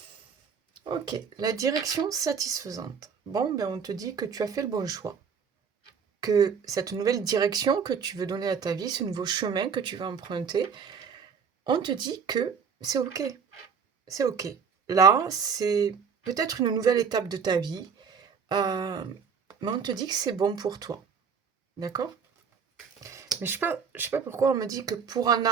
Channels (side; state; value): left; quieter; 6.3 dB